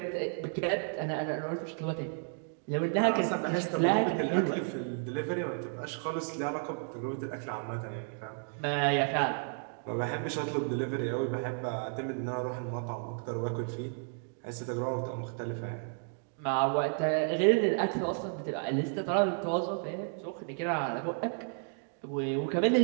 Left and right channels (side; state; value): left; silent; 56 dB below the other